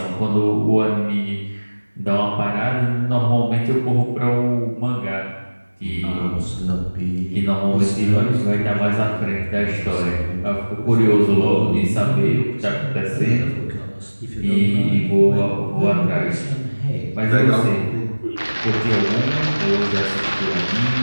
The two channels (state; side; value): inverted; both; correlation -1.00